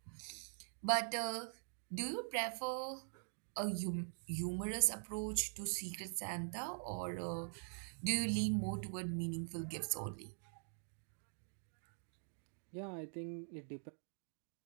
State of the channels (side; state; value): left; silent; digital silence